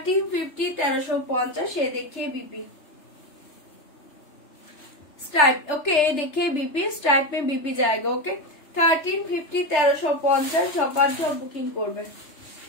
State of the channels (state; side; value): late; right; 3.3 ms